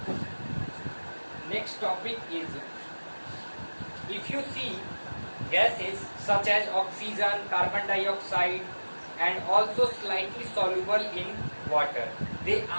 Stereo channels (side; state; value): both; inverted; correlation -1.00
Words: Next topic is, if you see gases such as oxygen, carbon dioxide, and also slightly soluble in water, they